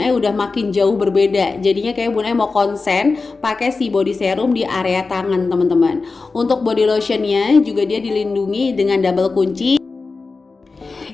Ai udah makin jauh berbeda. Jadinya kayak Bun Ai mau konsen pakai si body serum di area tangan teman-teman. Untuk body lotionnya juga dia dilindungi dengan double kunci.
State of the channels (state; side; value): quieter; right; 4.0 dB